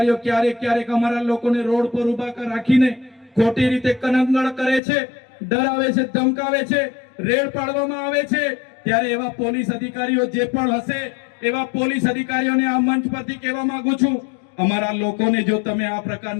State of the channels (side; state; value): right; drops out; at 4.8 s